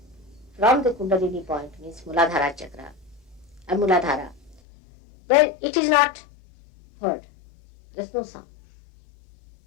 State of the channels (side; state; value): right; drops out; at 4.6 s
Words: from the Kundalini point, means Muladhara chakra and Muladhara, then it is not heard. There is no sound.